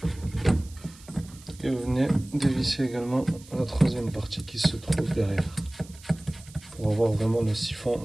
et vous venez dévisser également la troisième partie qui se trouve derrière pour avoir vraiment le siphon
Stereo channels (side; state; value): right; noise; hiss, 22 dB below the sound